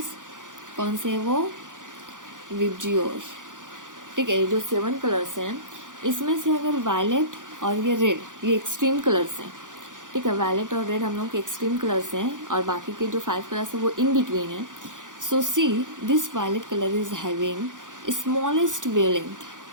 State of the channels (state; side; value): late; left; 0.87 ms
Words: कौन से है वो, विबजियोर, ठीक है। ये जो 7 कलर्स हैं इसमें से अगर वायलेट और ये रेड, ये एक्सट्रीम कलर्स हैं, ठीक है, वायलेट और रेड हम लोग के एक्सट्रीम कलर्स हैं, और बाकी के जो 5 कलर्स हैं वो इन बिटवीन है। So see this violet colour is having smallest